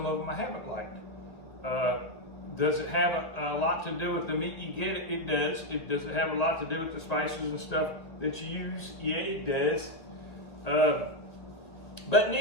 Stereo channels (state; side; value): late; right; 2.0 ms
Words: of them I haven't liked. Does it have a lot to do with the meat you get? It does. Does it have a lot to do with the spices and stuff that you use? Yeah, it does. But in